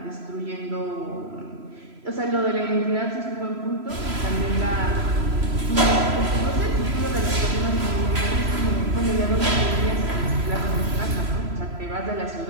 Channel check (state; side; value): late; left; 3.0 ms